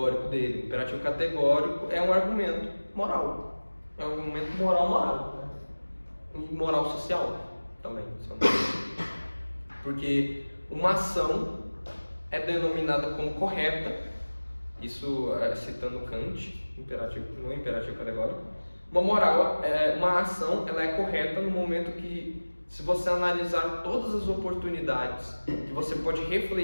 dele. O imperativo categórico é um argumento moral. É um argumento moral. Moral social também. Porque uma ação é denominada como correta, isso citando Kant, no imperativo categórico. Uma ação ela é correta no momento que, se você analisar todas as oportunidades que você pode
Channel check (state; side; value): inverted; both; correlation -1.00